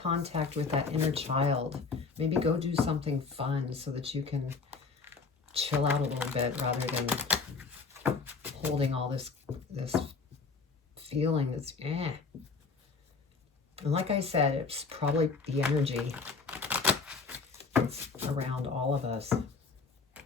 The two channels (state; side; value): quieter; right; 4.6 dB